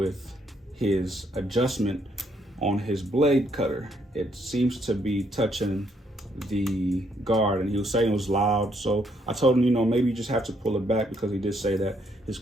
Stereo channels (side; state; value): both; normal; correlation 0.72